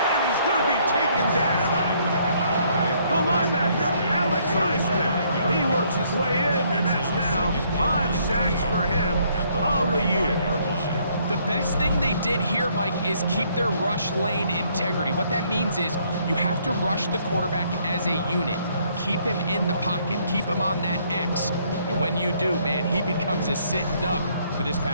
he's going to be taken down. The linebacker, Alex Highsmith. He works his way in, and that's now 5 sacks for him on the year. The best thing they did here, Mike, is keep their rush lane integrity. What that means is you have to rush the quarterback as a unit. Keep him in the pocket. Keep him on that X. And when you do, man, he becomes a sitting duck for this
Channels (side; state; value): both; inverted; correlation -0.67